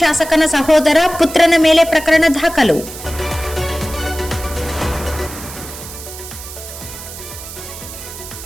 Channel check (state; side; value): noise; right; hiss, 12 dB below the sound